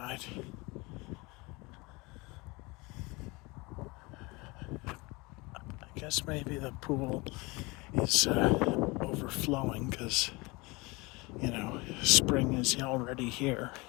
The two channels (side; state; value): right; quieter; 25.0 dB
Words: I guess maybe the pool is overflowing because, spring is already here.